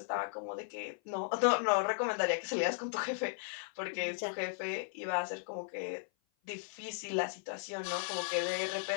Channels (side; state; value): right; silent; 54 dB below the other